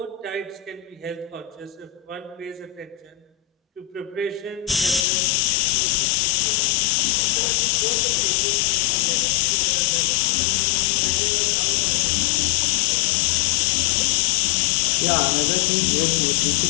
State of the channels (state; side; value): drops out; right; at 5.0 s